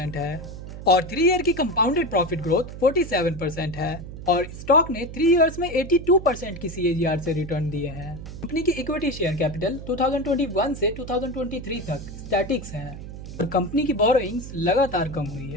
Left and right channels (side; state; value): right; noise; hum, 11 dB below the sound